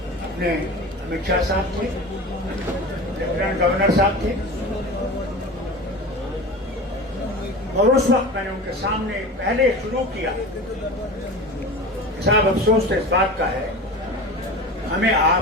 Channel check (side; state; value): both; normal; correlation 0.32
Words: अपने अमित शाह साहब थे, लेफ्टिनेंट गवर्नर साहब थे, और उस वक्त मैंने उनके सामने पहले शुरू किया। साहब अफसोस तो इस बात का है, हमें